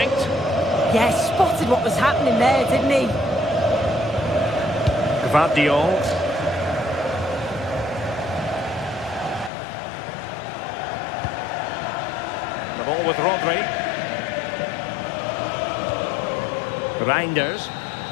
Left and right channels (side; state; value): right; drops out; at 9.5 s